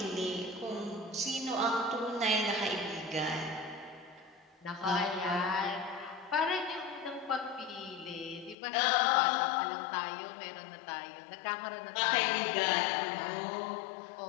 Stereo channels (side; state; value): right; drops out; at 8.6 s